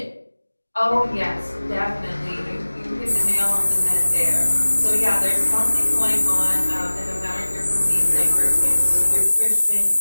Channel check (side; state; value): both; inverted; correlation -1.00